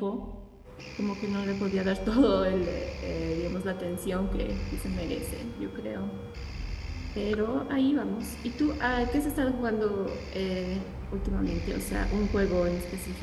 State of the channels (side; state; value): both; identical; correlation 1.00